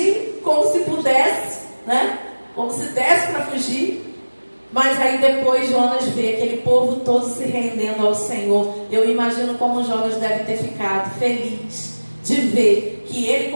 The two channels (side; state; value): both; inverted; correlation -1.00